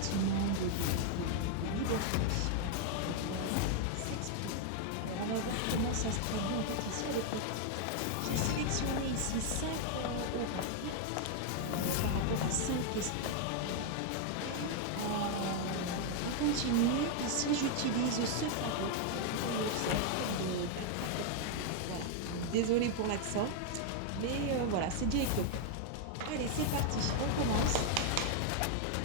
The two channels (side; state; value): both; different; correlation 0.00